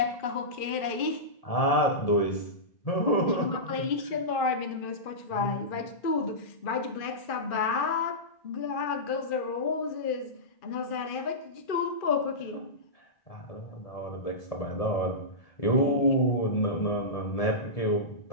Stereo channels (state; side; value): late; right; 2.4 ms